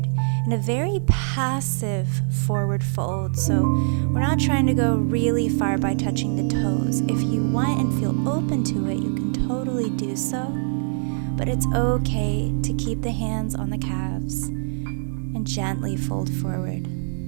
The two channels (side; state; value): left; silent; 63 dB below the other